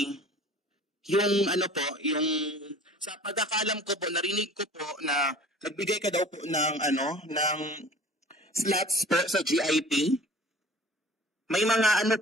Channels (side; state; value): both; normal; correlation 0.45